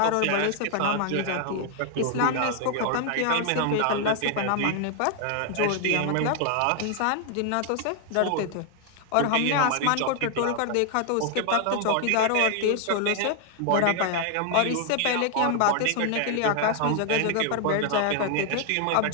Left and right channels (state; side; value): different; both; correlation 0.00